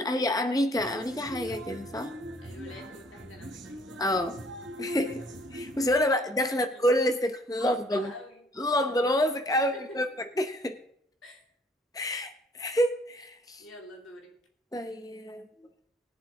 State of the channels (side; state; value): both; normal; correlation 0.60